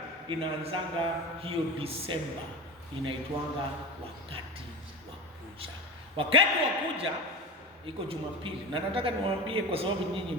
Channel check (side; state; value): both; normal; correlation 0.27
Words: inaanzanga hiyo Disemba, inaitwanga wakati wa kuja. Wakati wa kuja iko Jumapili, na nataka niwaambie kwa sababu nyinyi